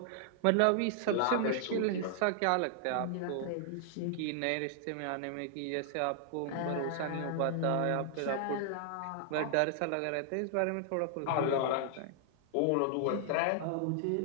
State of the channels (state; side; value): different; both; correlation 0.00